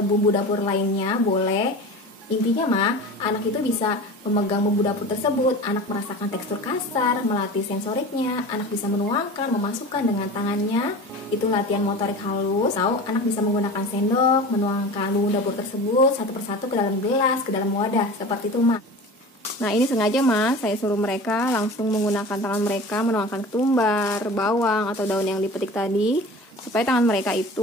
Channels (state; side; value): normal; both; correlation 0.35